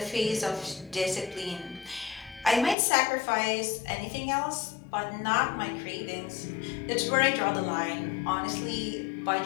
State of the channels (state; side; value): drops out; right; at 2.8 s